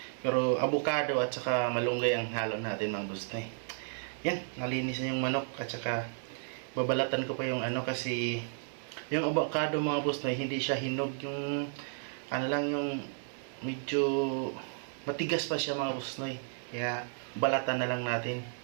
Pero avocado at saka malunggay ang halo natin mga boss noy. Yan, nalinis na yung manok at saka babalatan ko pa yung kasi yung avocado mga boss noy, hindi siya hinog, yung lang yung medyo matigas pa siya mga boss noy. Kaya balatan na lang natin.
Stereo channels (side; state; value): left; silent; 56 dB below the other